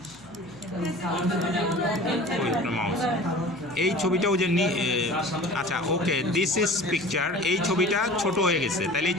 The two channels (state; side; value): noise; left; hum, 27 dB below the sound